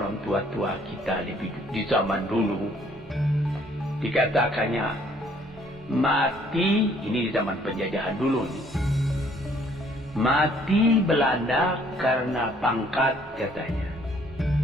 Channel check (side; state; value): both; normal; correlation 0.62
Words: tua-tua kita di zaman dulu, dikatakannya mati, ini di zaman penjajahan dulu nih. Mati Belanda karena pangkat katanya.